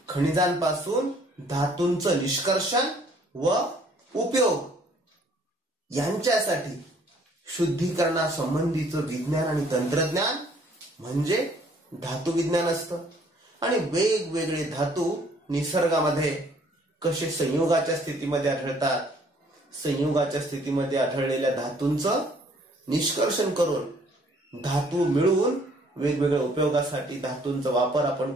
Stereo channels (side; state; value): both; normal; correlation 0.60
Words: खनिजांपासून धातूंचं निष्कर्षण व उपयोग यांच्यासाठी शुद्धीकरणासंबंधीचं विज्ञान आणि तंत्रज्ञान म्हणजे धातु विज्ञान असतं। आणि वेगवेगळे धातू निसर्गामध्ये कसे संयोगाच्या स्थितीमध्ये आढळतात, संयोगाच्या स्थितीमध्ये आढळलेल्या धातूंचं निष्कर्षण करून धातू मिळवून वेगवेगळ्या उपयोगासाठी धातूंचा वापर आपण